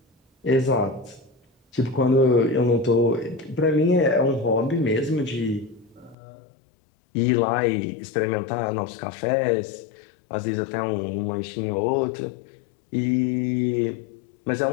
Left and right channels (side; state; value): right; drops out; at 6.2 s